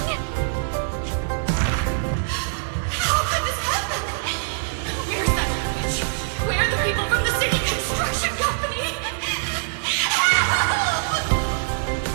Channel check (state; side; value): silent; left; digital silence